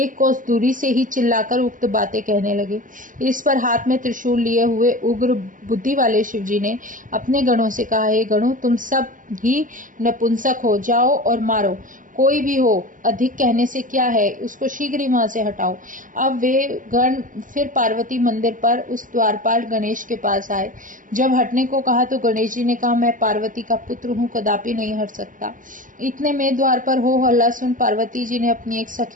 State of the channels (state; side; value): late; left; 0.38 ms